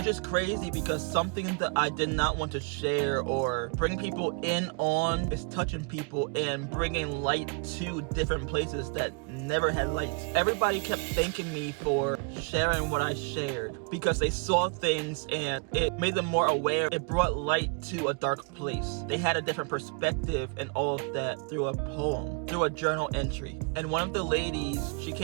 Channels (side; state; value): left; quieter; 37.1 dB